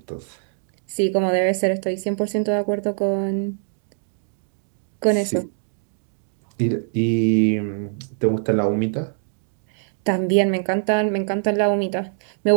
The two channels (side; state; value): left; silent; digital silence